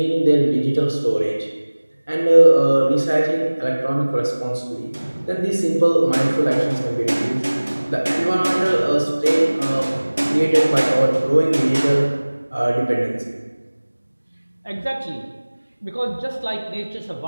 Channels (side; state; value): both; inverted; correlation -1.00